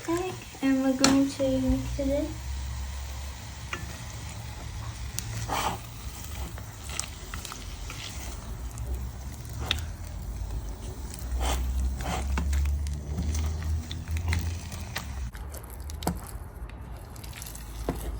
egg, and we're going to mix it in.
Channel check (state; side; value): identical; both; correlation 1.00